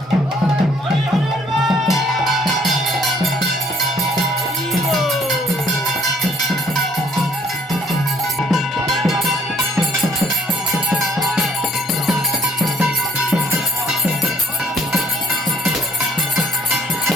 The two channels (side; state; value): both; normal; correlation 0.62